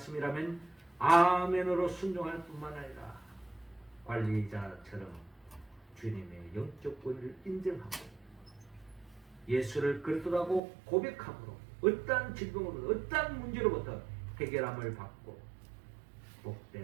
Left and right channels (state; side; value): drops out; left; at 10.6 s